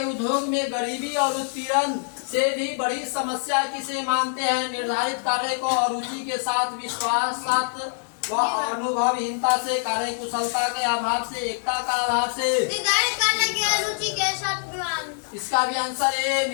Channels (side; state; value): right; silent; 62 dB below the other